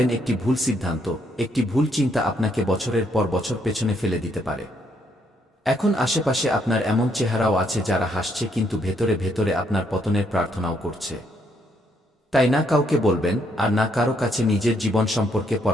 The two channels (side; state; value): both; normal; correlation 0.72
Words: একটি ভুল সিদ্ধান্ত, একটি ভুল চিন্তা আপনাকে বছরের পর বছর পেছনে ফেলে দিতে পারে। এখন আশেপাশে আপনার এমন চেহারাও আছে যারা হাসছে, কিন্তু ভেতরে ভেতরে আপনার পতনের প্রার্থনাও করছে। তাই না কাউকে বলবেন আর না কারো কাছে নিজের জীবন সম্পর্কে